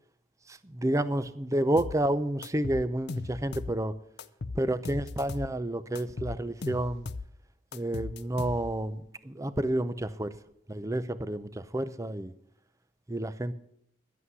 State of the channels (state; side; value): normal; both; correlation 0.82